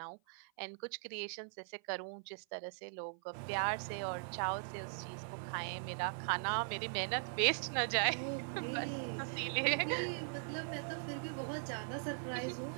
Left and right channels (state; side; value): silent; left; 51 dB below the other